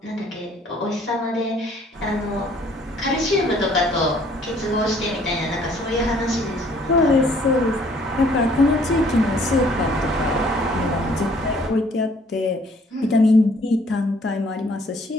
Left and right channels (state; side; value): normal; both; correlation 0.60